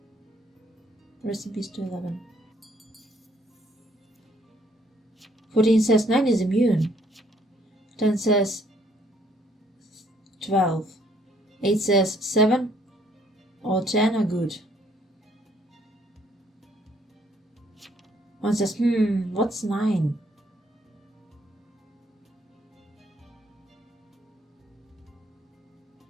Rest in peace to 11. 14 says 9 is immune. 10 says 12. 8 says 7 or 10 are good. 1 says, what's 9?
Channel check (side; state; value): both; normal; correlation 0.66